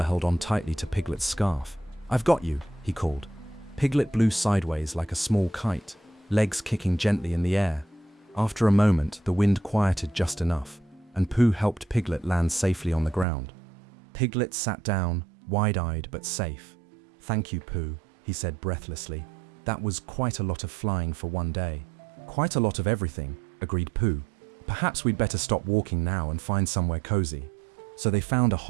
on tightly to Piglet's scarf. I've got you, he called. Piglet blew sideways like a small kite, legs kicking gently in the air. After a moment, the wind quieted just enough, and Pooh helped Piglet land safely on the ground. Piglet sat down, wide-eyed but safe. Thank you, Pooh, he said breathlessly. That was quite a lot of flying for one day. Quite a lot of everything, agreed Pooh. Perhaps we'd better stop walking now and find somewhere cozy. So they found a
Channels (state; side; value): drops out; left; at 13.2 s